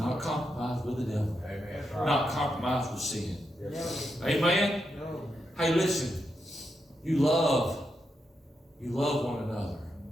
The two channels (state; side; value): normal; both; correlation 0.84